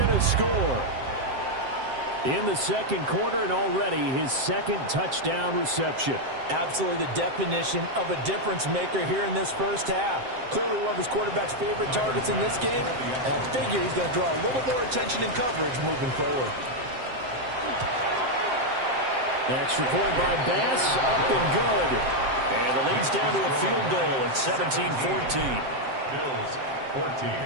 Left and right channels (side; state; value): left; late; 7.6 ms